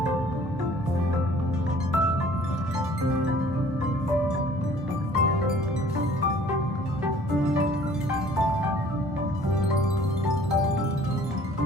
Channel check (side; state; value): both; normal; correlation 0.53